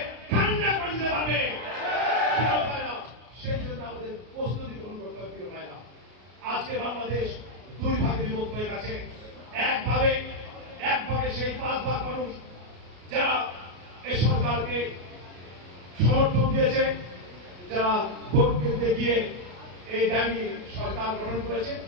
ঠান্ডা করে দিতে পারবে। প্রিয় ভাইরা, সেই জন্য আমাদের প্রস্তুতি গ্রহণ করতে হবে। প্রিয় ভাইরা, আজকে বাংলাদেশ 2 ভাগে বিভক্ত হয়ে গেছে। এক ভাগে সেই 5 ভাগ মানুষ যারা এই সরকারকে সমর্থন দিয়েছে, যারা ভোট কেন্দ্রে গিয়ে এই দাবি সরকার গ্রহণ করেছে।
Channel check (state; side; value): late; left; 33 ms